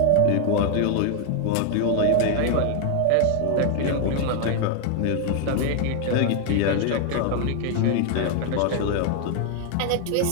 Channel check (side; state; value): both; different; correlation 0.00